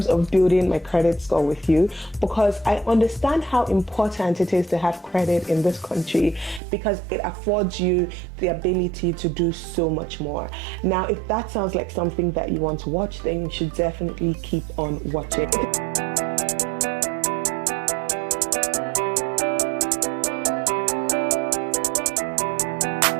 of building my credit score with you, because I understand how important it is to have credit in this country because it affords you the ability to do so much more. Now, if that sounds like something that you want to watch, then you should definitely keep on watching.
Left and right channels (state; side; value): drops out; left; at 6.6 s